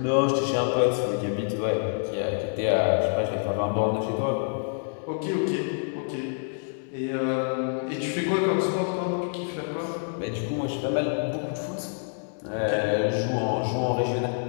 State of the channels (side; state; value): right; silent; digital silence